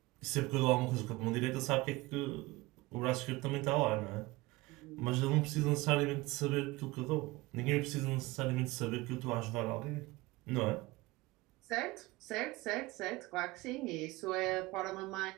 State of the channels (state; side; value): quieter; left; 21.1 dB